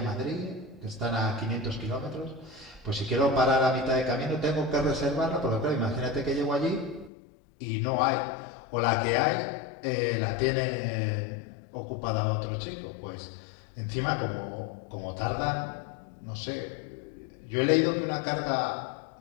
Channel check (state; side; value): drops out; right; at 7.1 s